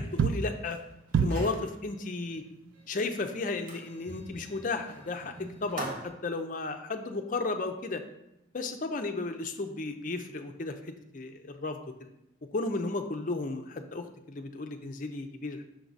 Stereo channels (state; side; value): normal; both; correlation 0.33